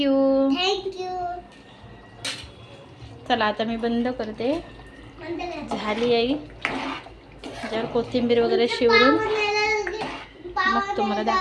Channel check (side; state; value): both; identical; correlation 1.00